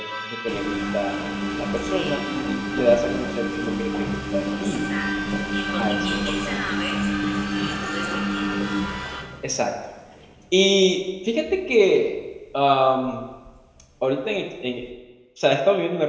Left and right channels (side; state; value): both; identical; correlation 1.00